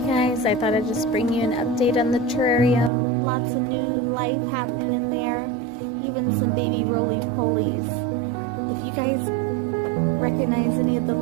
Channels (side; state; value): left; drops out; at 2.9 s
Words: I thought I'd just bring you an update on the terrarium. Lots of new life happening in there, even some baby roly-polies. If you guys recognize any of the